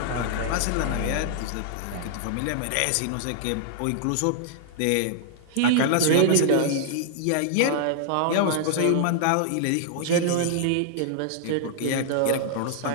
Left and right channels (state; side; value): different; both; correlation -0.01